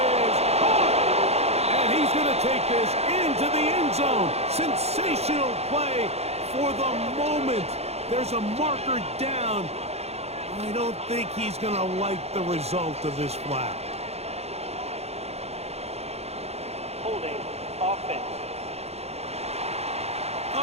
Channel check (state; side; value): late; left; 0.31 ms